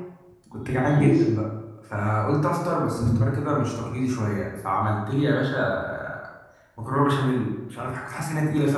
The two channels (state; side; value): identical; both; correlation 1.00